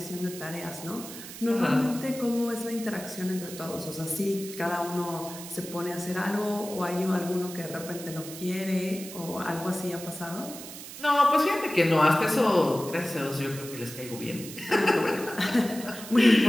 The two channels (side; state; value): right; noise; hiss, 12 dB below the sound